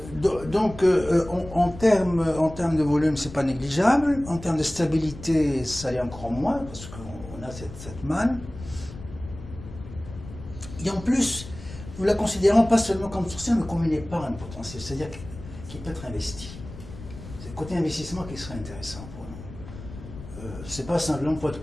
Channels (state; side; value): noise; left; rumble, 14 dB below the sound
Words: Donc, en termes de volume, c'est pas négligeable. En termes de stabilité, ça l'est encore moins, parce qu'on a cette manne. Et en plus, nous la considérons pas seulement comme sourcière, mais comme une épargne potentielle, c'est-à-dire qui peut être investie. C'est le côté investissement qui serait intéressant pour nous. C'est pas simplement pour être